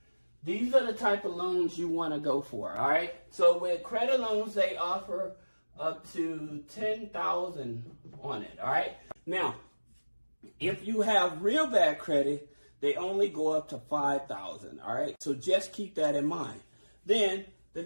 These are the type of loans you want to go for, all right? So with credit loans, they offer up to $10,000 on it, all right? Now, if you have real bad credit, they only go up to $5,000, all right? So just keep that in mind. Then the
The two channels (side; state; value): both; inverted; correlation -1.00